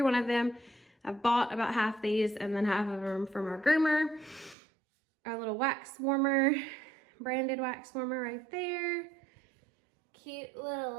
one of them. I've bought about half these and then half of them from our groomer. Our little wax warmer, branded wax warmer right there. Cute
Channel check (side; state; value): left; drops out; at 4.5 s